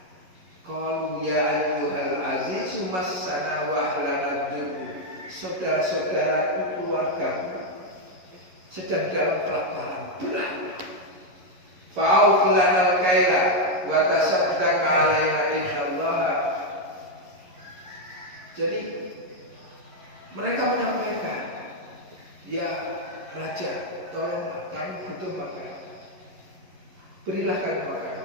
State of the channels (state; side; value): late; left; 11 ms